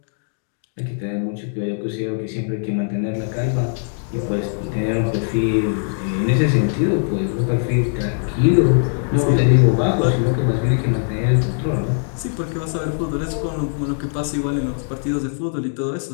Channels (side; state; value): right; silent; 65 dB below the other